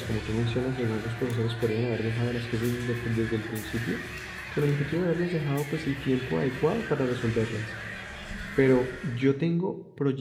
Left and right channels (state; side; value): identical; both; correlation 1.00